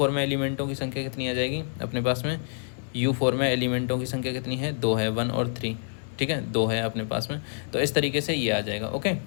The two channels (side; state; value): right; silent; 59 dB below the other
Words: में एलिमेंटों की संख्या कितनी आ जाएगी अपने पास में, U4 में एलिमेंटों की संख्या कितनी है, 2 है, 1 और 3। ठीक है, 2 है अपने पास में, तो इस तरीके से ये आ जाएगा। ओके,